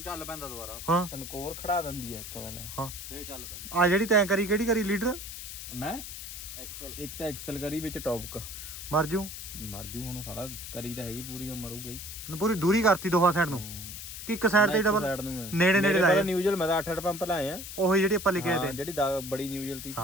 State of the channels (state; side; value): noise; left; hiss, 9 dB below the sound